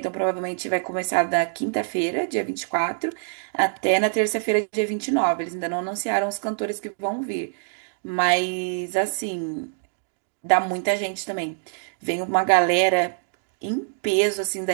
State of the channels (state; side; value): silent; left; digital silence